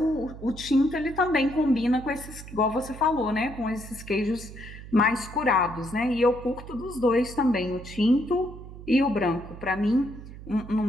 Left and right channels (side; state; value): right; noise; hum, 14 dB below the sound